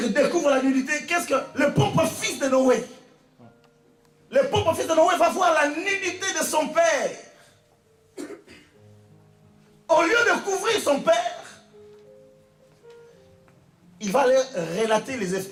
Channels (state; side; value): identical; both; correlation 1.00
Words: découvre la nudité, qu'est-ce que le propre fils de Noé, le propre fils de Noé va voir la nudité de son père. Au lieu de couvrir son père, il va aller relater